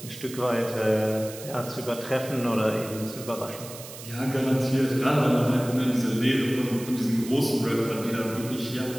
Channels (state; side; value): noise; right; hiss, 14 dB below the sound